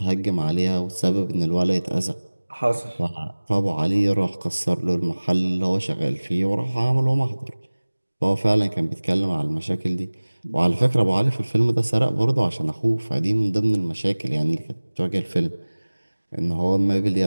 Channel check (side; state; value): both; inverted; correlation -1.00